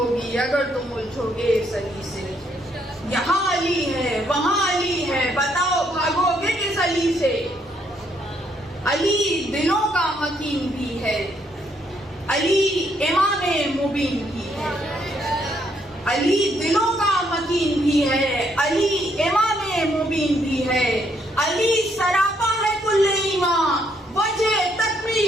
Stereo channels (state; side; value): normal; both; correlation 0.72